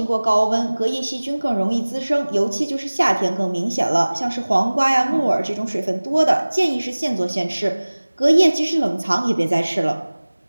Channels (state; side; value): inverted; both; correlation -1.00